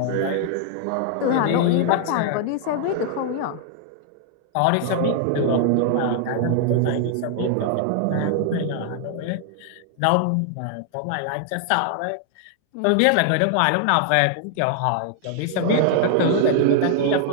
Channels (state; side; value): different; both; correlation 0.00